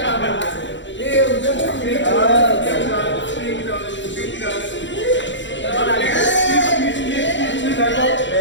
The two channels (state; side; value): late; right; 0.54 ms